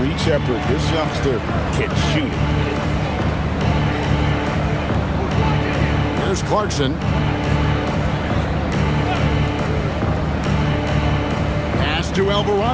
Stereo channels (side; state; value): both; identical; correlation 1.00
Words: Shepard, this youngster can shoot it. Here's Clarkson. Pass to